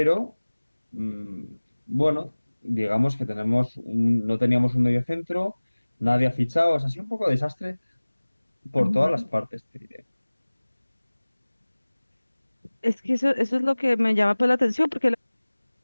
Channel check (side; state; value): both; inverted; correlation -1.00